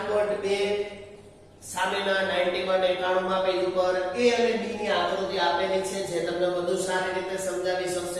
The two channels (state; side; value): identical; both; correlation 1.00